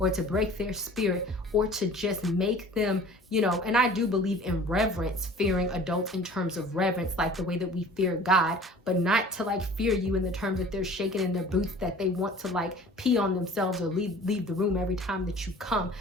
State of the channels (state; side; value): normal; both; correlation 0.46